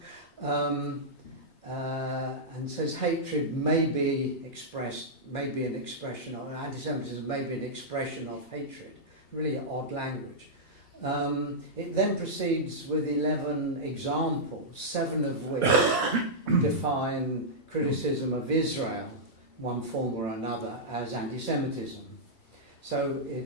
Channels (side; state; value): right; late; 2.7 ms